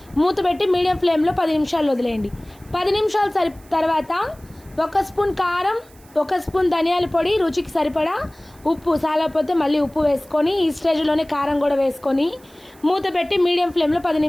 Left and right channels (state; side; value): noise; right; hiss, 27 dB below the sound